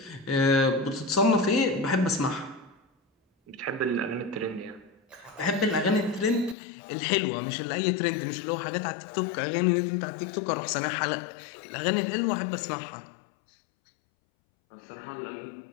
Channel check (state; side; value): drops out; right; at 6.6 s